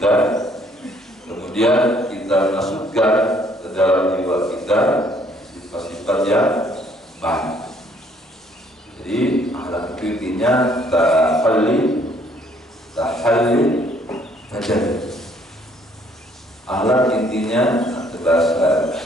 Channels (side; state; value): both; normal; correlation 0.64